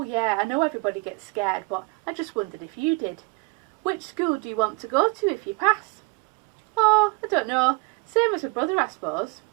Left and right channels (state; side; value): quieter; left; 29.6 dB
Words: yeah, I know everybody gets scared, but I just wondered if you did. Which school do you want to go to if you pass? Oh, I don't know. Same as my brother, I suppose.